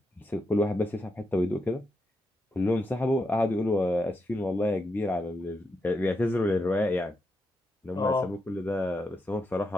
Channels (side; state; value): both; normal; correlation 0.84